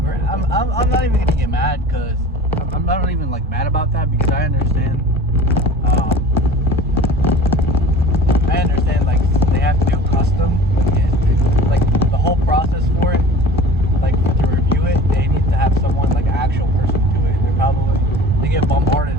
I'm not even gonna get mad because I'm not even like mad about that because I understand. Like they have to do custom. It's like the whole process for it. Like to review it, they need to have someone like an actual person do it. They get bombarded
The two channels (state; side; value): normal; both; correlation 0.41